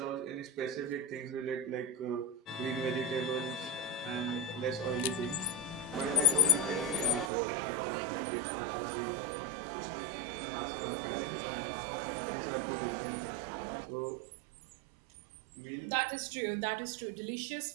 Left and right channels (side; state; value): left; drops out; at 7.3 s